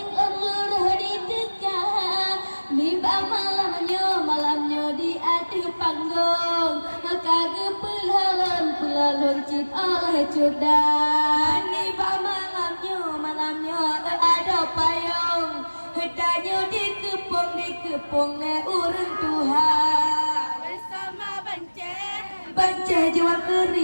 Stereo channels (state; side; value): inverted; both; correlation -1.00